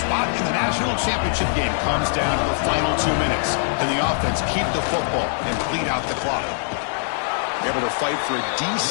in the national championship game comes down to the final 2 minutes. Can the offense keep the football and bleed out the clock? Able to fight for a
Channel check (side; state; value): right; silent; digital silence